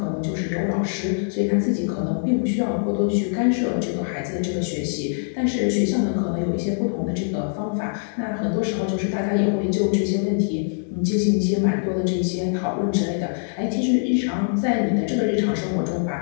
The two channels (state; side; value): silent; right; digital silence